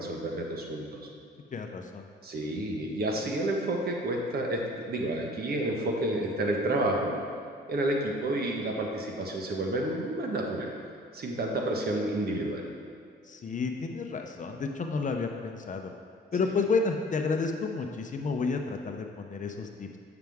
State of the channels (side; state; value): both; normal; correlation 0.48